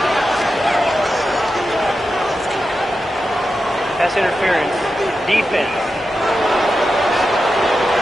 Pass interference. Defense.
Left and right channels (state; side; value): normal; both; correlation 0.90